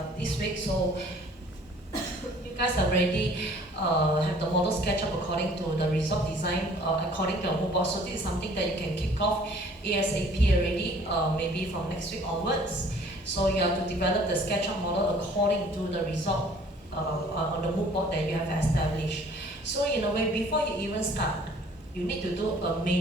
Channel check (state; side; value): normal; both; correlation 0.54